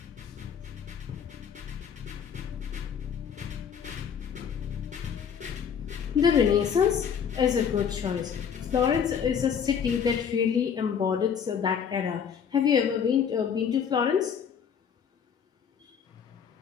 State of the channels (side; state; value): right; quieter; 7.5 dB